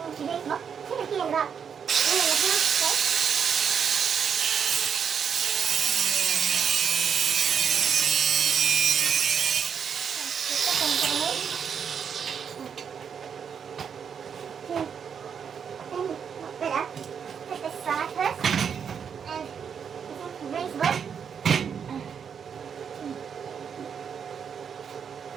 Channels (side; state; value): left; quieter; 7.2 dB